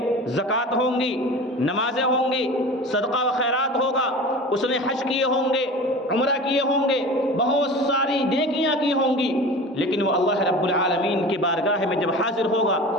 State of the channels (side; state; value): both; normal; correlation 0.35